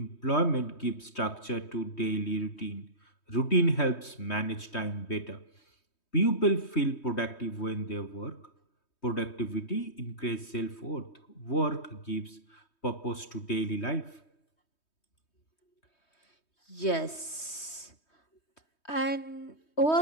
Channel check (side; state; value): right; late; 3.2 ms